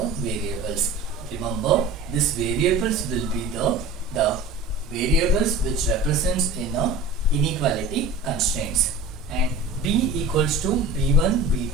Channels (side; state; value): left; quieter; 3.0 dB